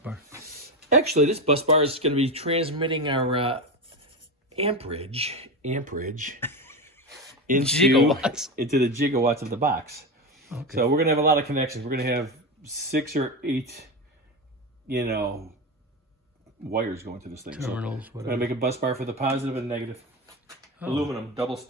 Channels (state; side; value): normal; both; correlation 0.18